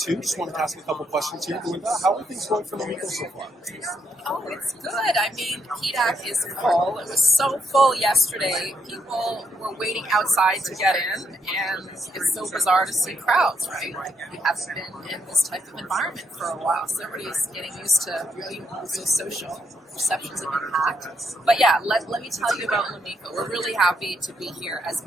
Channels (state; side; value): normal; both; correlation 0.77